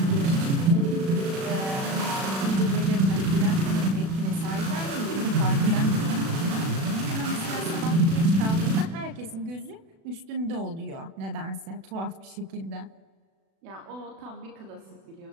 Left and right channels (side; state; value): left; late; 36 ms